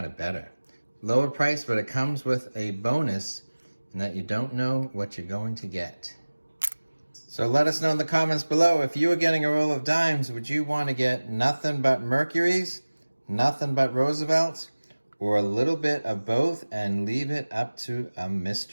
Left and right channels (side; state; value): both; inverted; correlation -1.00